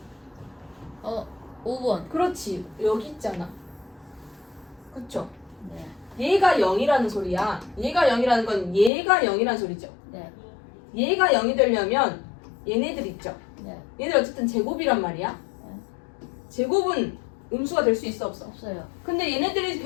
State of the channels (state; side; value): drops out; right; at 8.9 s